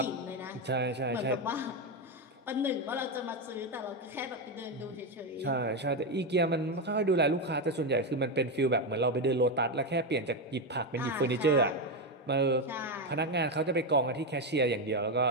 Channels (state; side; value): normal; both; correlation 0.09